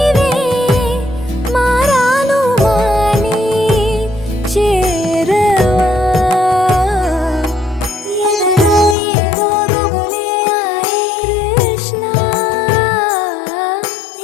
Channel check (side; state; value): right; drops out; at 9.0 s